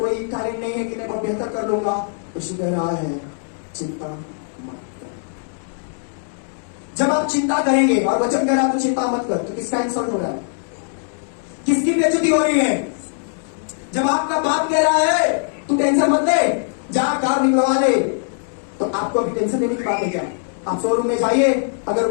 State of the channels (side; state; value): right; silent; digital silence